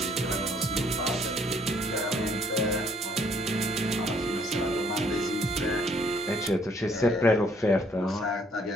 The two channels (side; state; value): both; normal; correlation 0.64